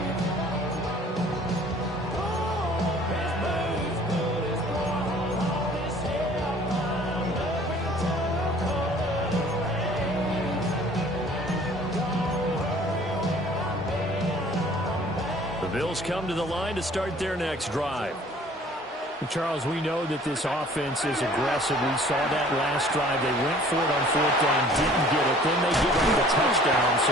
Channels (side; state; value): both; normal; correlation 0.52